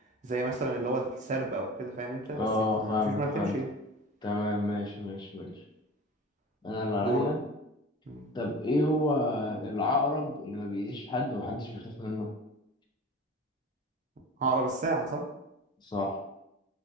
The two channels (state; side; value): normal; both; correlation 0.37